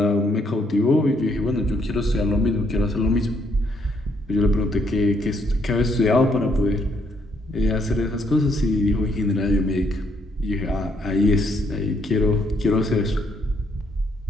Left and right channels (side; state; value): both; normal; correlation 0.72